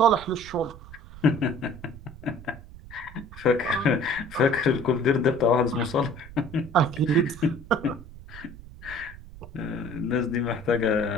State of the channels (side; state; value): right; noise; rumble, 16 dB below the sound